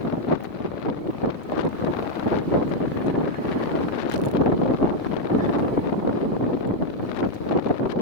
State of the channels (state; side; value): late; right; 3.5 ms